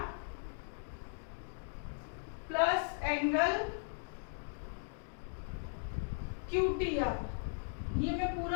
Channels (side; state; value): right; silent; digital silence